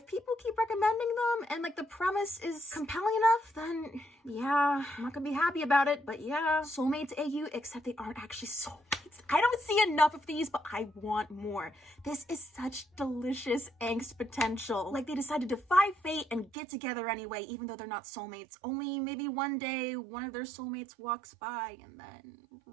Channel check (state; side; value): drops out; left; at 16.5 s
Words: people keep recommending them and like the premise is compelling enough, then yeah, I'm not gonna be happy about it, but yeah. Soulmates AU, except they aren't actually soulmates. I don't see enough of these, but I want more. This is such delicious angst potential. Like they decided to defy fate and get together anyway, even though they're not soulmates. Only maybe one day one of their soulmates walks by and then...